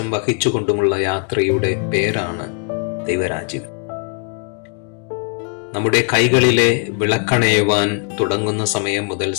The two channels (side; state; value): right; quieter; 39.2 dB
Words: വഹിച്ചുകൊണ്ടുമുള്ള യാത്രയുടെ പേരാണ് ദൈവരാജ്യം. നമ്മുടെ കൈകളിലെ വിളക്കണയുവാൻ തുടങ്ങുന്ന സമയം മുതൽ